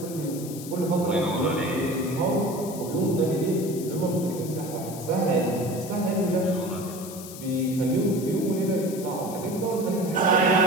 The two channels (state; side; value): noise; left; hiss, 13 dB below the sound